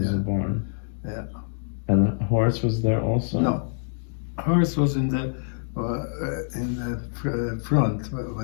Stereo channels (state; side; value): silent; right; digital silence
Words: the barn. Yeah. And the horse was there also? No, horse was in the front where